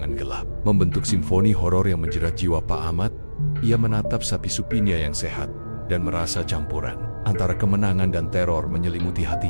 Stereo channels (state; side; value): inverted; both; correlation -1.00